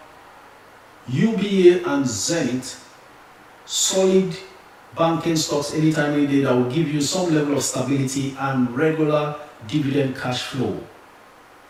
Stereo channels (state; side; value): identical; both; correlation 1.00